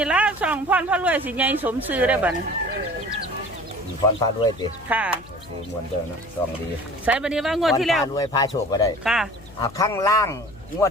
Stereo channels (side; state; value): left; noise; hum, 21 dB below the sound